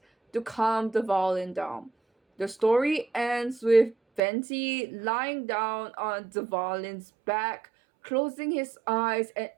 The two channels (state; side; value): drops out; left; at 4.2 s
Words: to calm the violin down. The story ends with Venti lying down on Dvalin's back, closing his eyes and